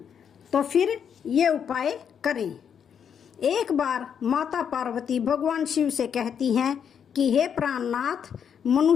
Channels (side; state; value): right; quieter; 7.8 dB